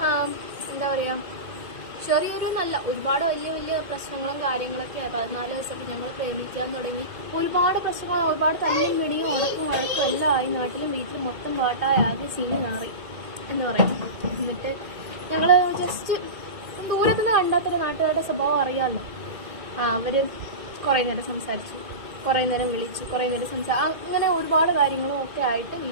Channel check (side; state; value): left; late; 2.1 ms